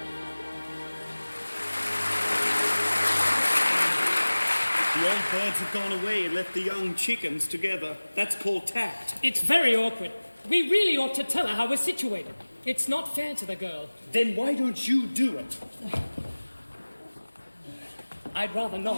The old birds have gone away and left the young chickens together. That's called tact. It's very awkward. We really ought to tell her how we're situated. It's not fair to the girl. Then why don't you do it? I'd rather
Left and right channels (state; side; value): inverted; both; correlation -1.00